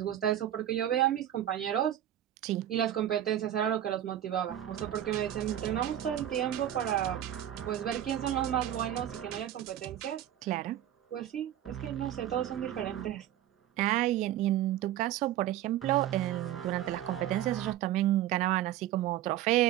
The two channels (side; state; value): left; quieter; 12.0 dB